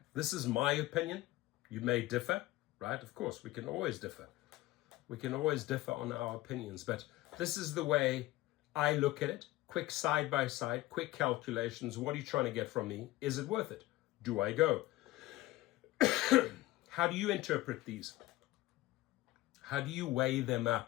This is my opinion. You may differ, right? Of course, we can always differ. We can always differ on our opinions, but this is the way I look at it. Quick side by side, quick calculations. What are you trying to get from me? Is it worth it? Do I go? How do you interpret these? How do you weigh them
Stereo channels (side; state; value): right; quieter; 17.8 dB